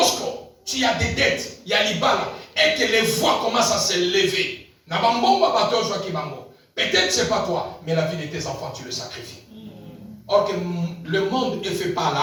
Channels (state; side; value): identical; both; correlation 1.00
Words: tu as des dettes, il y a l'ibala, et que les voix commencent à se lever, peut-être c'est pas toi, mais la vie de tes enfants, tu le sacrifies. Or que le monde ne fait pas